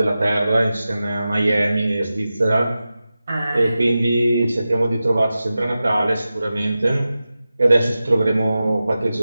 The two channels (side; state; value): both; inverted; correlation -0.94